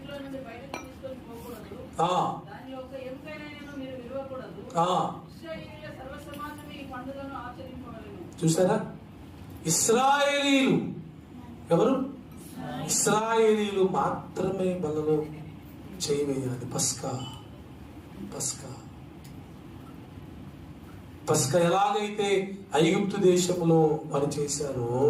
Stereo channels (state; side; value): identical; both; correlation 1.00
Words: చూసారా, ఇశ్రాయేలీలు ఎవరు? ఇశ్రాయేలీలు మాత్రమే బలలో చేయవేయాలి. పస్కా ఎలాగైతే ఐగుప్తు దేశంలో వారు చేశారో